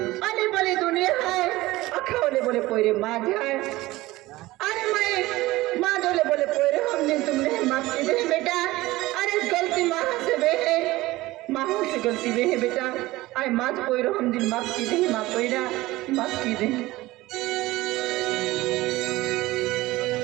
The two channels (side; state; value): left; quieter; 18.6 dB